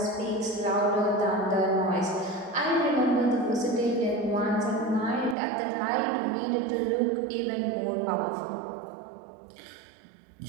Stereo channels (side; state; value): left; drops out; at 5.4 s